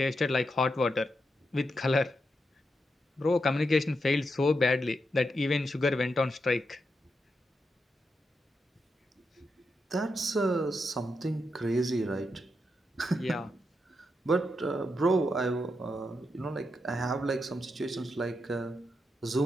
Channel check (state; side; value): normal; both; correlation 0.84